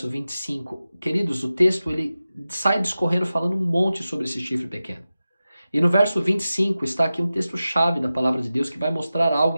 25. Queridos, o texto ele sai discorrendo falando um monte sobre esse chifre pequeno. E no verso 25 está aqui um texto-chave da palavra de Deus que vai mostrar algo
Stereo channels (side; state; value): both; inverted; correlation -0.94